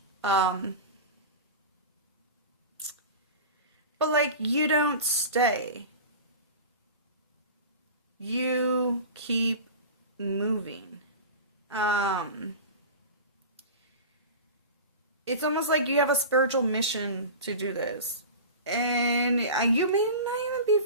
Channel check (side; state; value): both; inverted; correlation -0.31